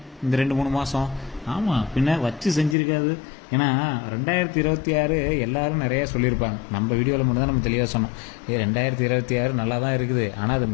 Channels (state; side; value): drops out; right; at 2.8 s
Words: இந்த 2-3 மாதம். ஆமாம், பின்ன வச்சு செஞ்சுருக்காது. ஏன்னா 2026 எல்லாரும் நிறையா சொல்லியிருப்பாங்க. நம்ம வீடியோவில் மட்டும் தான் நம்ம தெளிவாக சொன்னோம். 2026 நல்லா தான் இருக்குது. ஆனால் அது